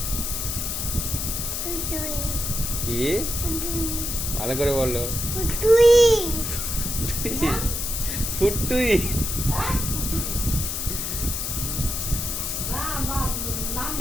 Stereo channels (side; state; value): left; noise; hiss, 2 dB below the sound